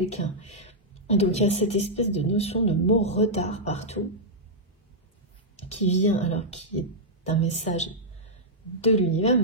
Donc il y a cette espèce de notion de mot retard partout, qui vient, alors qui est un message de l'univers,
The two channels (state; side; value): normal; both; correlation -0.07